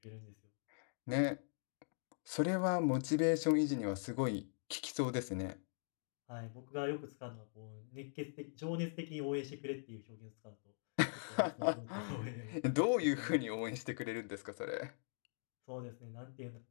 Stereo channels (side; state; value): right; silent; digital silence